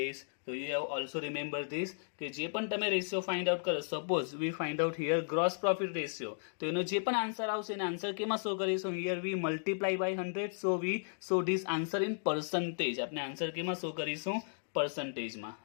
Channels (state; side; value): silent; right; digital silence